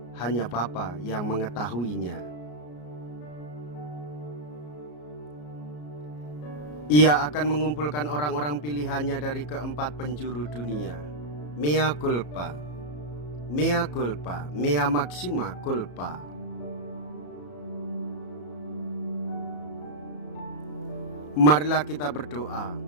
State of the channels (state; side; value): late; right; 34 ms